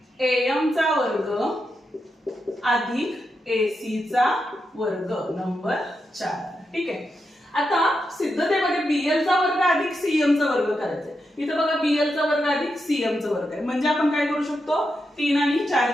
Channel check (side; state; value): both; normal; correlation 0.86